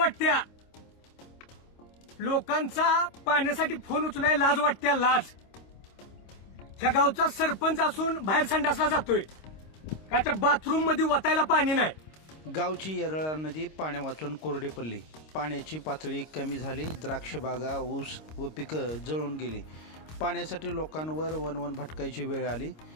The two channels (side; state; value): right; late; 26 ms